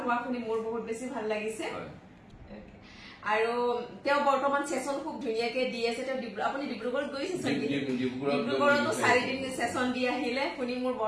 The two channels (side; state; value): both; identical; correlation 1.00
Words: হোৱা শুনি মোৰ বহুত বেছি ভাল লাগিছে আৰু তেওঁ বৰ্তমান সেশন খুব ধুনীয়াকে দি আছে তেওঁ আপুনি ডিব্ৰুগড়ত গৈছে ডিব্ৰুগড়তো 4 দিন সেশন দি আহিলে শুনি মোৰ